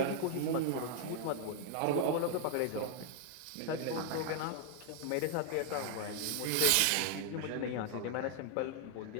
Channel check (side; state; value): both; different; correlation 0.00